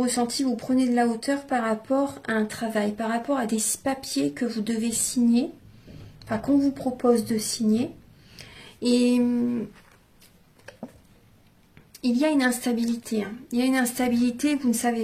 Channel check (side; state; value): both; identical; correlation 1.00